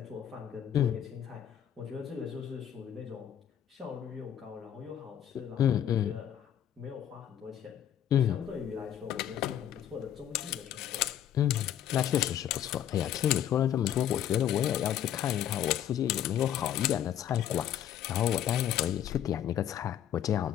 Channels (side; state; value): right; quieter; 10.4 dB